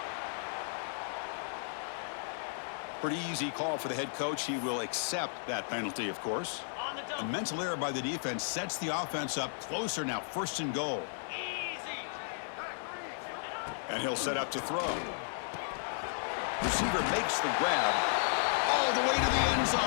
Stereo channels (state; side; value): silent; right; 55 dB below the other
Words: Pretty easy call for the head coach. He will accept that penalty, of course. A mental error by the defense sets the offense up closer now. 1st and goal. And he'll set up to throw. Receiver makes the grab all the way to the end